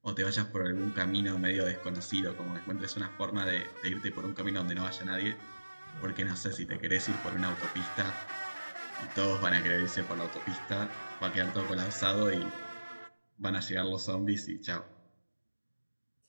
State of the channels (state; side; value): inverted; both; correlation -1.00